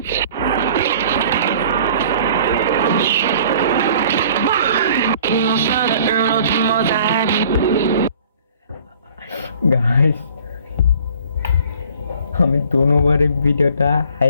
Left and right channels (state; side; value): inverted; both; correlation -0.52